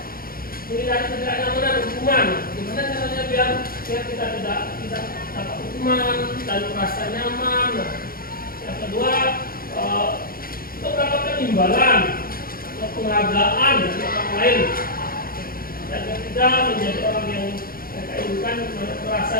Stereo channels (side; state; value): right; late; 0.42 ms